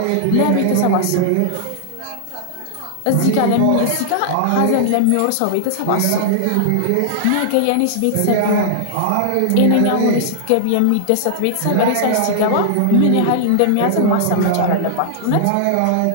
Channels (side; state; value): both; different; correlation -0.01